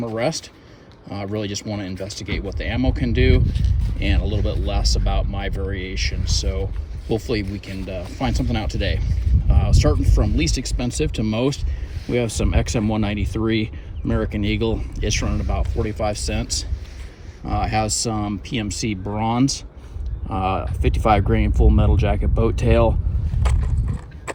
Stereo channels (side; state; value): both; identical; correlation 1.00